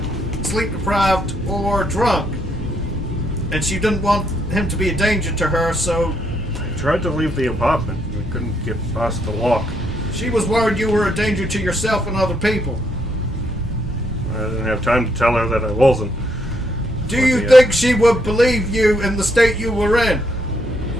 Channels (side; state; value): both; normal; correlation 0.74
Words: sleep deprived or drunk. And she didn't want him to be a danger to her, so I tried to leave the apartment. I couldn't get past the lock. she was worried you were a danger to yourself and other people. I didn't have time to tell her that I wasn't. Do you think she would believe you in the state you were in?